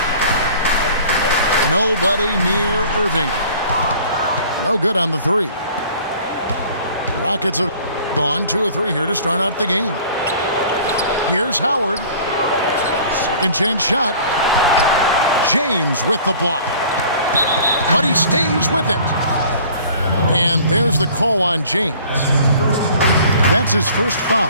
Nobody near Irving. No good on the three. Rockets have gone 2 of 3 here to start out the game. Here's Howard. Second chance shot. James with the block. But he stays with it. And there's the call on James. That's his first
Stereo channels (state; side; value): inverted; both; correlation -0.49